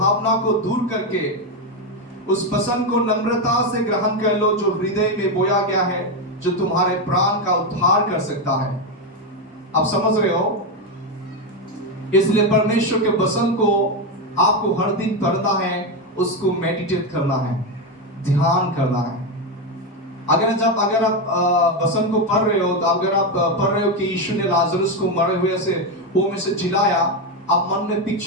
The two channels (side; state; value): both; normal; correlation 0.09